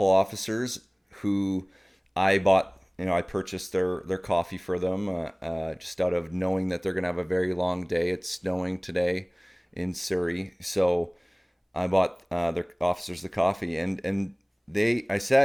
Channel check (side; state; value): both; identical; correlation 1.00